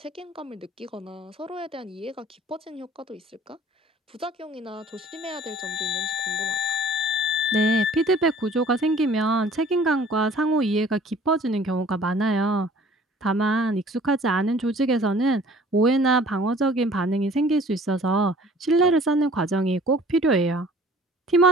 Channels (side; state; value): both; normal; correlation 0.52